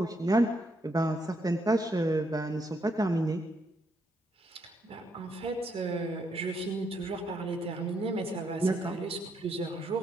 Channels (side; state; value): both; normal; correlation 0.76